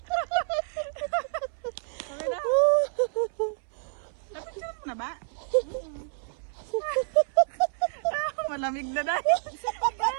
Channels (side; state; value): left; silent; 59 dB below the other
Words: Okay na? Napicture mo na ba? Malamig na dahil.